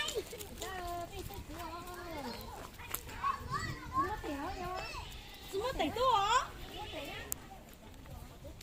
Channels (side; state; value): both; identical; correlation 1.00